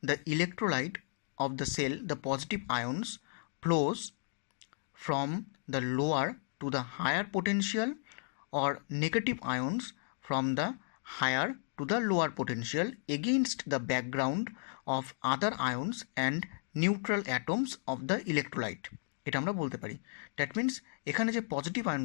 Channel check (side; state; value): right; silent; digital silence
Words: the electrolyte of the cell the positive ions flows from the lower to the higher potential or negative ions from the higher to the lower potential against the background of other ions and neutral atoms of the electrolyte, এটা আমরা বলতে পারি। That means এখানে যে positive